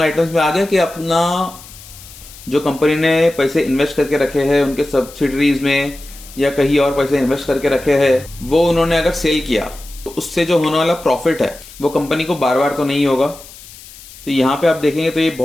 आइटम्स में आ गया कि अपना जो कंपनी ने पैसे इन्वेस्ट करके रखे हैं उनके सब्सिडरीज में या कहीं और पैसे इन्वेस्ट करके रखे हैं, वो उन्होंने अगर सेल किया तो उससे जो होने वाला प्रॉफिट है वो कंपनी को बार बार तो नहीं होगा। तो यहाँ पे आप देखेंगे तो ये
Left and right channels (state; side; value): noise; left; hiss, 19 dB below the sound